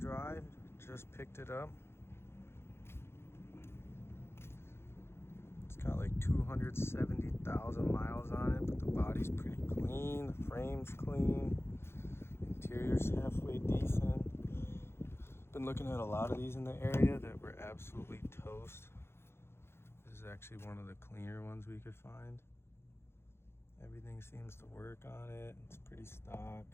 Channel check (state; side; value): late; right; 0.12 ms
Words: Just picked it up. It's got like 270,000 miles on it, but the body's pretty clean. The frame's clean. Interior's halfway decent. Been looking at a lot of these in the area that were absolutely toast. This is actually one of the cleaner ones we could find. Everything seems to work on it. It's pretty stock,